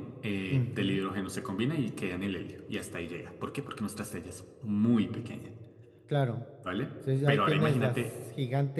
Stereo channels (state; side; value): identical; both; correlation 1.00